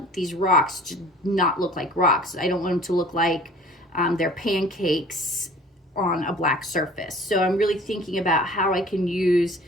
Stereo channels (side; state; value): both; normal; correlation 0.48